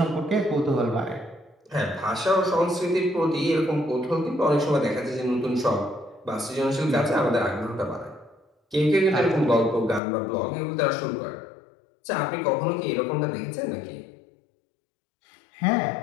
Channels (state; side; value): drops out; right; at 10.0 s